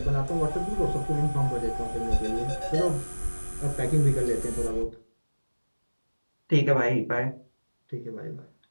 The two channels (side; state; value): both; inverted; correlation -1.00